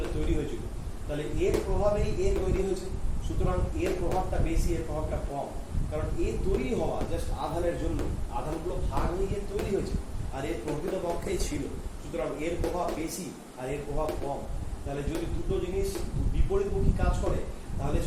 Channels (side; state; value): both; identical; correlation 1.00